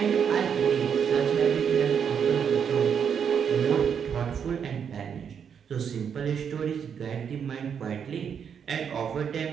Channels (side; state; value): left; quieter; 7.5 dB